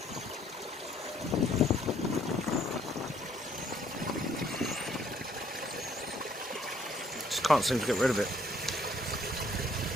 Just can't seem to get rid of it.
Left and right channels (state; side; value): normal; both; correlation 0.64